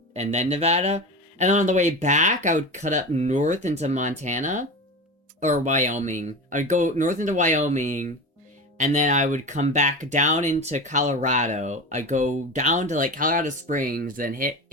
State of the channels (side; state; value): both; normal; correlation 0.27